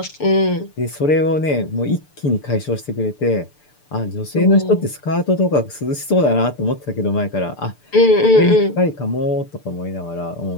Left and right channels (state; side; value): late; right; 6.8 ms